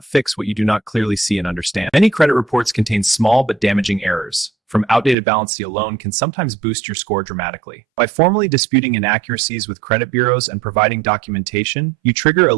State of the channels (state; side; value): drops out; left; at 5.2 s